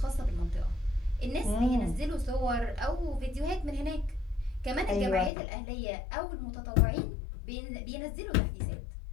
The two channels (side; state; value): right; drops out; at 5.3 s